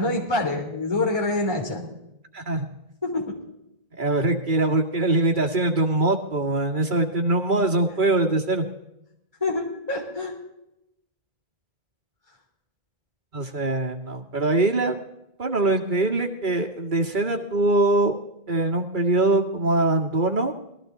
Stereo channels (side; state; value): left; late; 2.3 ms